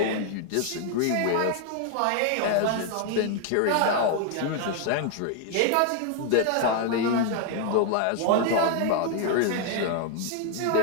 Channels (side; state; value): both; different; correlation 0.00